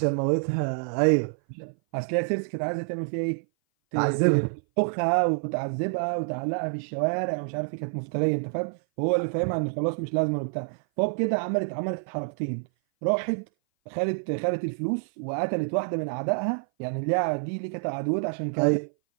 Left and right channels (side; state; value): left; silent; 57 dB below the other